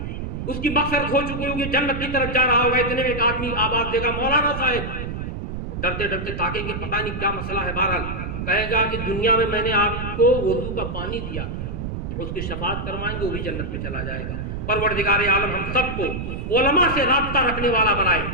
उसकी मग़फ़िरत हो चुकी होगी, जन्नत की तरफ जा रहा होगा, इतने में एक आदमी आवाज देगा, मौलाना साहब। डरते डरते ताकेंगे, पता नहीं क्या मसला है। बहरहाल कहेगा कि दुनिया में मैंने आपको वुज़ू का पानी दिया, उसकी शफाअत करवाएंगे, वो भी जन्नत में चला जाएगा। परवरदिगार आलम हम सबको उलमा से राब्ता रखने वाला बनाए,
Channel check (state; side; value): noise; right; rumble, 5 dB below the sound